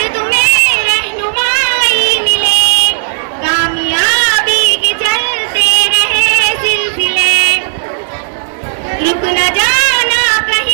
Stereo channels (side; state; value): left; silent; digital silence